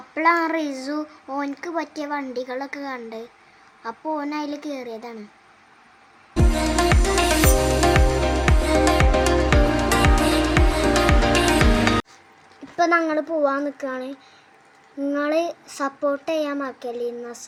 റിസു ഓനക്ക് പറ്റിയ വണ്ടികളൊക്കെ കണ്ട്. അപ്പോൾ ഓൻ അതിൽ കയറിയതാണ്. ഇപ്പം ഞങ്ങൾ പോവാൻ നിൽക്കുകയാണ്. നിങ്ങൾ സപ്പോർട്ട് ചെയ്യാൻ മറക്കല്ലേ.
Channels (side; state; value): both; identical; correlation 1.00